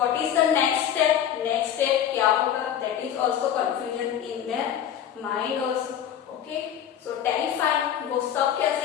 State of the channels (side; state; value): right; quieter; 9.7 dB